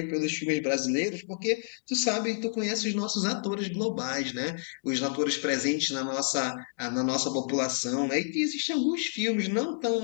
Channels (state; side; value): silent; right; digital silence